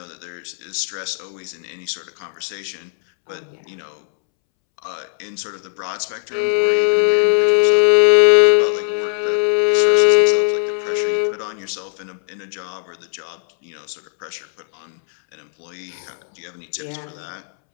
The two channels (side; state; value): right; silent; 66 dB below the other